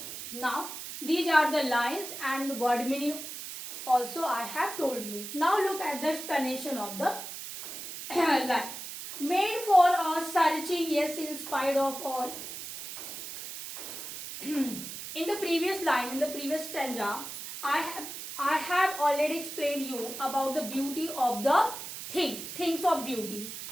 Now these are the lines and word meaning also I have told you. Now look at the explanation of the line. Made for or searching, yes, in spite of all. In the previous line, in the previous stanza, I have already explained you about the beauty of the things of beauty.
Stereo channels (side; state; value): right; noise; hiss, 9 dB below the sound